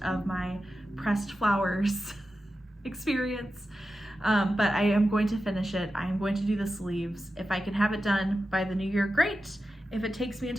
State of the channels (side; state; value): both; normal; correlation 0.92